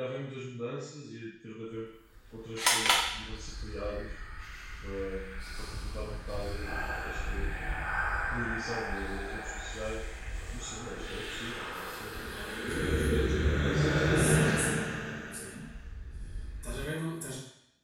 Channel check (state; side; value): identical; both; correlation 1.00